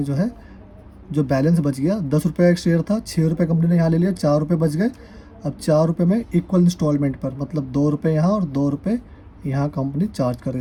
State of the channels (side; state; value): both; identical; correlation 1.00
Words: जो है, जो बैलेंस बच गया 10 रुपये एक शेयर था, 6 रुपये कंपनी ने यहाँ ले लिया, 4 रुपये बच गए। अब 4 रुपये में इक्वल इंस्टॉलमेंट पर, मतलब 2 रुपये यहाँ और 2 रुपये यहाँ कंपनी चार्ज कर रही